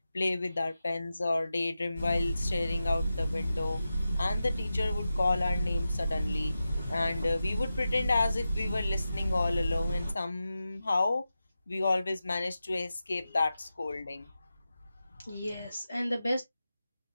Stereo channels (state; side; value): inverted; both; correlation -0.92